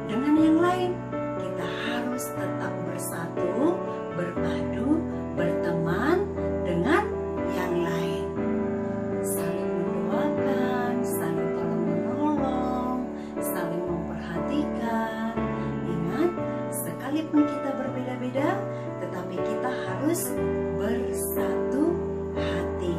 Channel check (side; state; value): both; identical; correlation 1.00